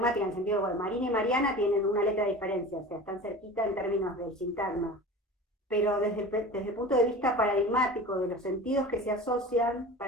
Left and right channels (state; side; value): normal; both; correlation 0.35